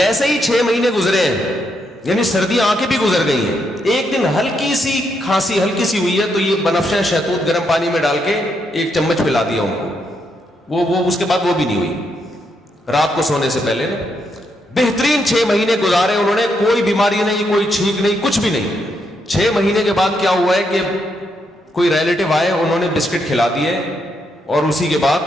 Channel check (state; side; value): normal; both; correlation 0.79